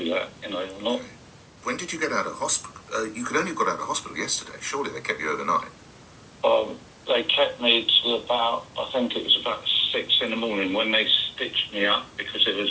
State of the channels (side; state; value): both; identical; correlation 1.00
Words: that, you know, I'm not... When did you get out of hospital? You could only have got out of hospital yesterday. Surely they kept you overnight. They kept me to about, I think it was about 6 in the morning when they stitched me up because there